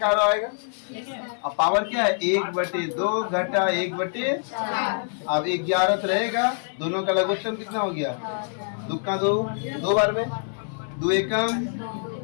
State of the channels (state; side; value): silent; right; 58 dB below the other